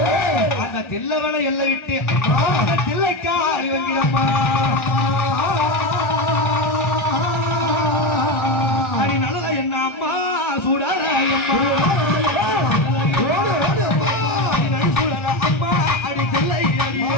அந்த தில்ல வேணும் எல்லை விட்டு அந்த தில்லைக்கா அறிவங்கிடம்மா அடி நடன என்ன அம்மா சுடல அம்மா சுடல அம்மா அடி தில்லை அடி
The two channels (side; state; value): right; late; 1.4 ms